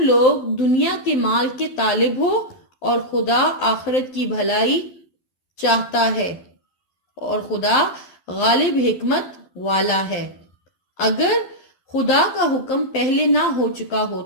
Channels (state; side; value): late; right; 12 ms